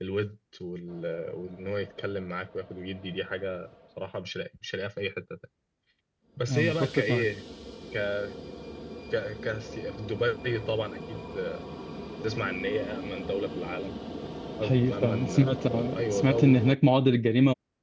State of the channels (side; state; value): both; identical; correlation 1.00